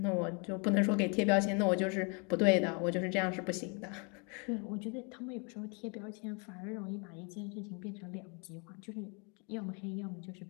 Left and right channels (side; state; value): right; quieter; 34.4 dB